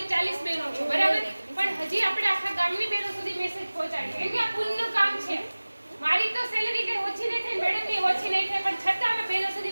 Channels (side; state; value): both; inverted; correlation -1.00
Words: 40 બહેનો છો બરાબર, પણ હજી આપણે આખા ગામની બહેનો સુધી મેસેજ પહોંચાડીએ, કેમ કે આ પુણ્યનું કામ છે. મારી તો સેલેરી કઈ ઓછી નહીં થાય, મેડમની ઓછી નહીં થાય, પણ છતાં અમે બહેનો